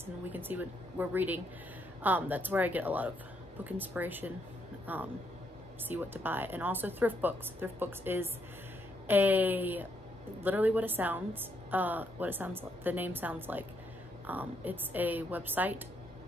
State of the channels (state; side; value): normal; both; correlation 0.75